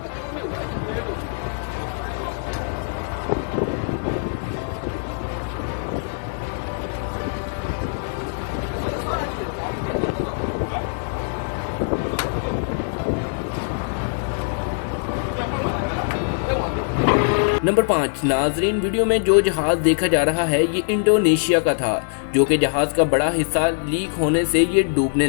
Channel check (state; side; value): silent; right; digital silence